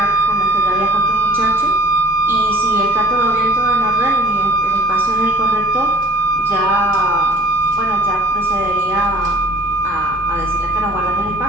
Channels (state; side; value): normal; both; correlation 0.50